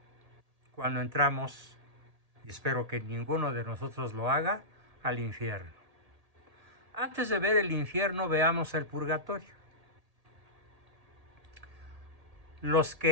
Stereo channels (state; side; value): late; left; 1.8 ms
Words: cuando entramos, y espero que ninguno de nosotros lo haga, al infierno? Antes de ver el infierno, veamos el purgatorio. Los